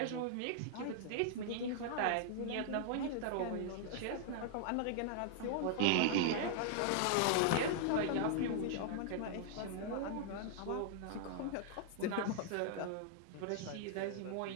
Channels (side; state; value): both; different; correlation -0.01